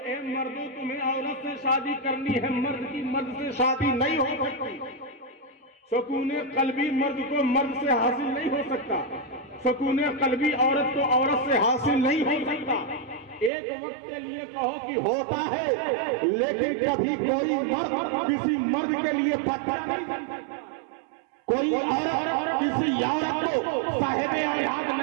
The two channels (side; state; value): left; drops out; at 13.5 s